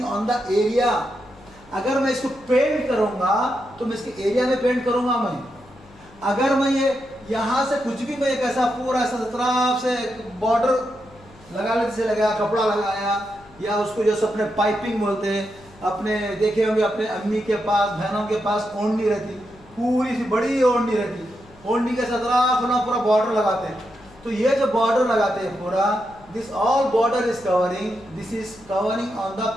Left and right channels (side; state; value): left; noise; hum, 24 dB below the sound